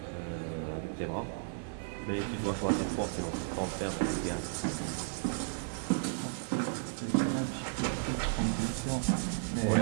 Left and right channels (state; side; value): silent; left; 55 dB below the other